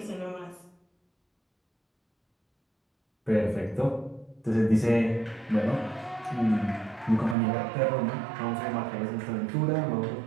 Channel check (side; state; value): left; drops out; at 7.4 s